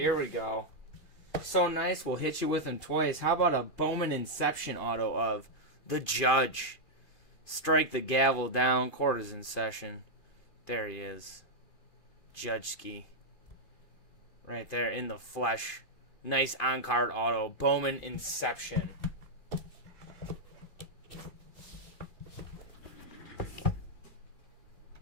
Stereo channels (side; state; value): right; late; 2.5 ms